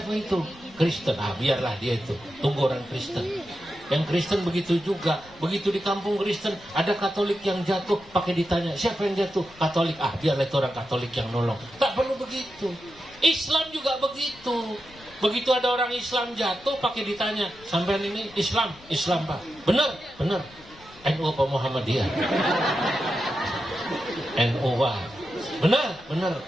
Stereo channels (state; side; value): noise; left; rumble, 24 dB below the sound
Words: itu? Kristen. Biarlah dia itu. Tunggu orang Kristen. Yang Kristen begitu juga. Begitu di kampung Kristen, ada Katolik yang jatuh, pakai ditanya, siapa yang jatuh? Katolik. Biarlah itu orang Katolik yang nolong. Tak perlu begitu. Islam juga begitu. Begitu ada orang Islam jatuh, pakai ditanya, sampean ini Islam? Islam, Pak. Benar? Benar. NU apa Muhammadiyah? NU, Pak. Benar? Benar.